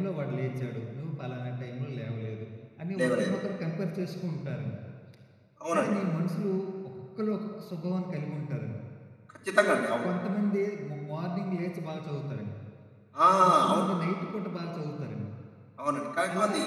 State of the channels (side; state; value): both; identical; correlation 1.00